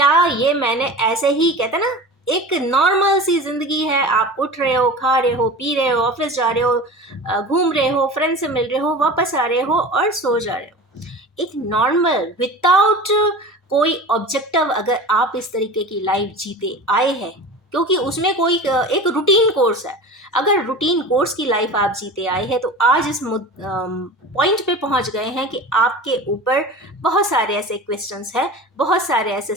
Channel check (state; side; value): normal; both; correlation 0.34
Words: ये मैंने ऐसे ही, कहते ना एक नॉर्मल सी जिंदगी है, आप उठ रहे हो, खा रहे हो, पी रहे हो, ऑफिस जा रहे हो, घूम रहे हो, फ्रेंड से मिल रहे हो, वापस आ रहे हो और सो जा रहे हो। एक नॉर्मल विदाउट कोई ऑब्जेक्टिव अगर आप इस तरीके की लाइफ जीते आए हैं, क्योंकि उसमें कोई एक रूटीन कोर्स है, अगर रूटीन कोर्स की लाइफ आप जीते आए हैं तो आज इस पॉइंट पे पहुंच गए हैं कि आपके ऊपर बहुत सारे ऐसे क्वेश्चंस हैं, बहुत सारे ऐसे